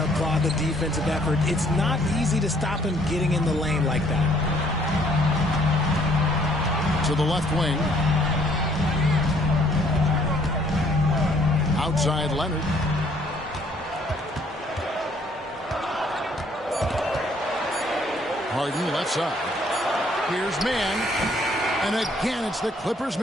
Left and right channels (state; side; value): normal; both; correlation 0.63